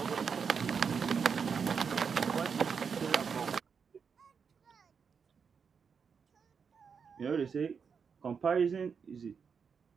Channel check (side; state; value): left; quieter; 6.2 dB